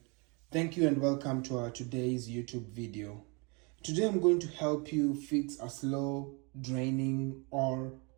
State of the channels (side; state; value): left; quieter; 31.0 dB